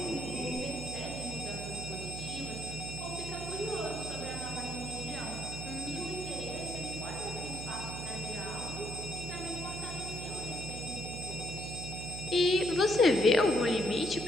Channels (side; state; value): right; noise; hum, 7 dB below the sound